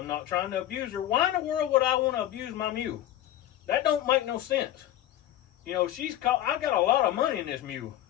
not trying to abuse her. Why in the world would I want to abuse my mule? That don't make no sense. You know, I got a lot of money in this mule.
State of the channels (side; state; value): right; quieter; 12.8 dB